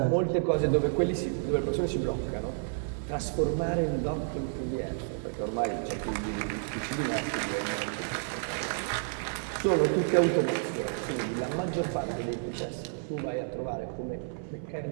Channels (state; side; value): silent; left; 57 dB below the other